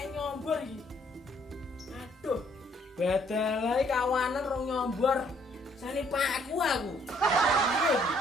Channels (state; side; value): normal; both; correlation 0.66